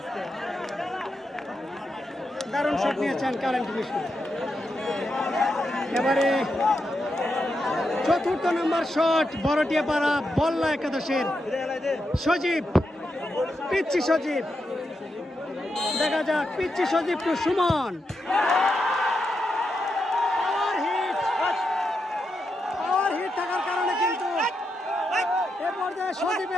দারুণ শট নিয়েছেন কারেন্ট মিশু। এবারে 4র্থ নম্বর শট বড়টিয়াপাড়া বল্লা একাদশের সজীব। পিচ্ছি সজীব। দেখা যাক পিচ্ছি সজীব টু সুমন। পাওয়ার হিট থাকার কারণে কিন্তু এ পর্যায়ে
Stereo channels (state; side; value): normal; both; correlation 0.85